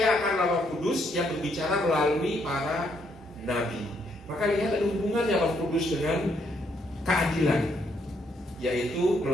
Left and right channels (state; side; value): normal; both; correlation 0.73